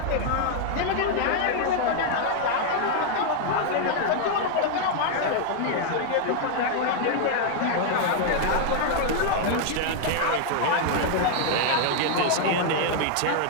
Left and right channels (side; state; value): both; different; correlation 0.00